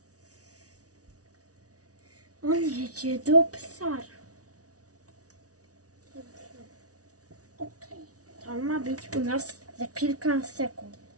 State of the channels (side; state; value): left; late; 0.68 ms